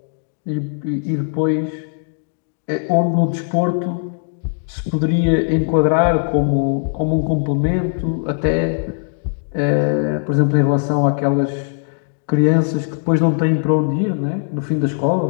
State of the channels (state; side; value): silent; right; digital silence